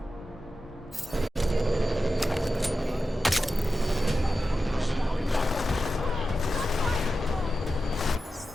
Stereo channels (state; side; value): normal; both; correlation 0.92